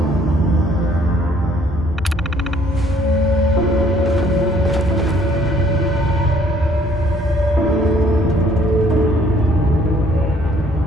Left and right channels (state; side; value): normal; both; correlation 0.61